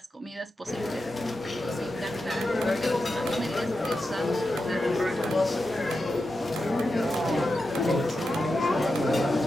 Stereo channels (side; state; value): both; normal; correlation 0.90